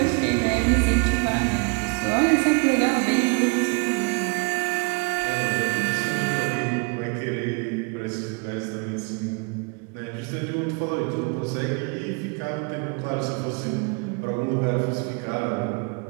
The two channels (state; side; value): quieter; left; 32.5 dB